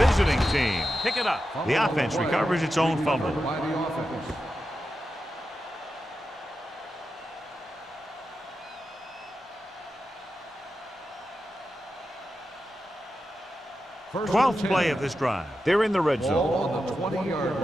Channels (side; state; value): both; normal; correlation 0.90